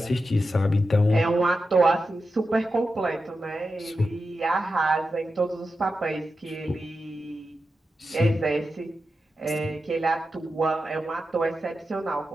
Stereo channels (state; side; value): normal; both; correlation 0.90